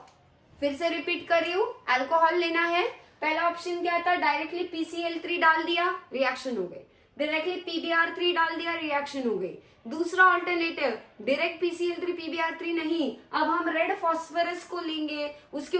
फिर से रिपीट कर रही हूं, अल्कोहल लेना है। पहला ऑप्शन क्या था, डायरेक्टली PCl3 डाल दिया, रिएक्शन हो गई। डायरेक्टली PBr3 डाल दिया, रिएक्शन हो गई। दूसरा ऑल्टरनेटिव, डायरेक्ट PCl3 PBr3 नहीं, अब हम रेड फॉस्फोरस को लेंगे, उसके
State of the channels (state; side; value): identical; both; correlation 1.00